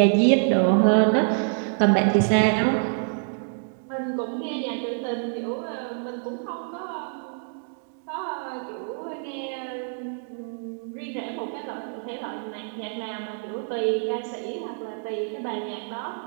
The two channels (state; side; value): silent; left; 61 dB below the other